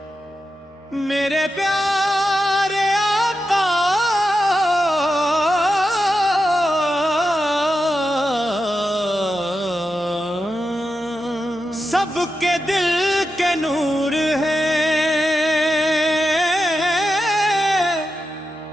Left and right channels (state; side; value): normal; both; correlation 0.89